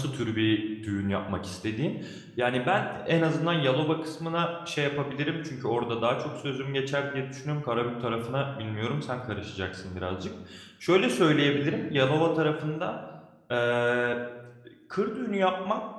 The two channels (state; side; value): identical; both; correlation 1.00